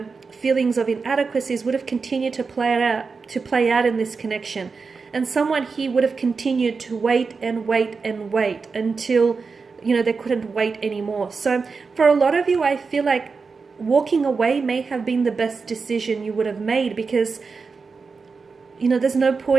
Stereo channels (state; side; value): quieter; left; 4.8 dB